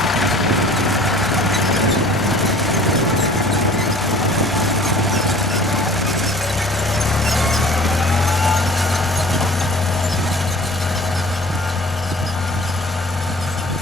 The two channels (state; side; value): normal; both; correlation 0.47